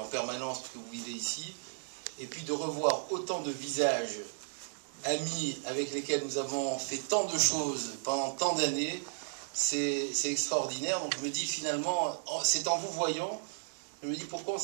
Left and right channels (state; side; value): silent; left; digital silence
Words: permanence, que vous vivez ici. Et puis de revoir autant de visages amis avec lesquels nous avons fait tant de choses pendant tant d'années, c'est extraordinaire. Donc je me dis finalement, c'est en vous voyant, je me dis pourquoi on ne